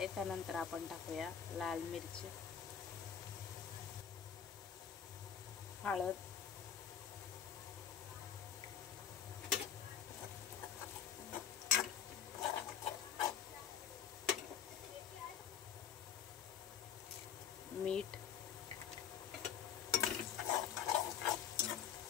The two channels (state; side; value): quieter; right; 8.5 dB